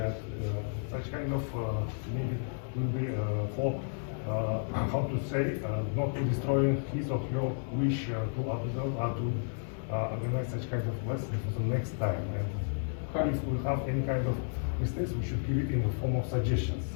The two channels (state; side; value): silent; right; digital silence